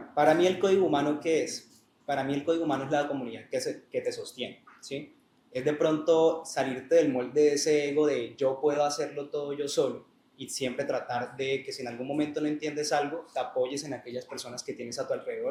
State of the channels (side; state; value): both; identical; correlation 1.00